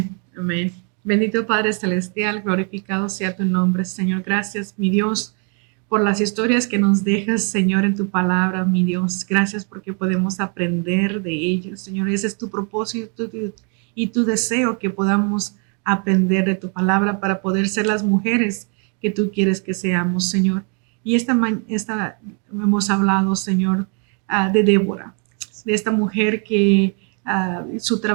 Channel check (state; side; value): quieter; left; 38.1 dB